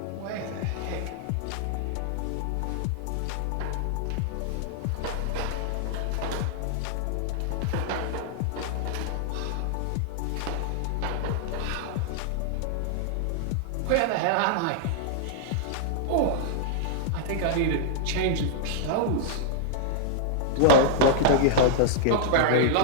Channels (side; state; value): both; different; correlation -0.01